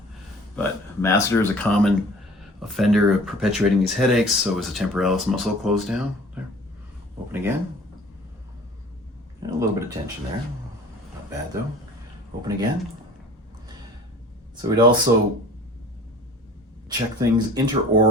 But masseter is a common offender of perpetuating these headaches, so is the temporalis muscle closed down. There. Open again. And a little bit of tension there. Not bad though. Open again. So we'd also check things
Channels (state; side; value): normal; both; correlation 0.46